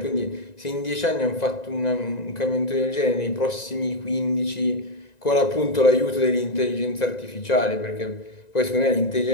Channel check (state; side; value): late; right; 1.9 ms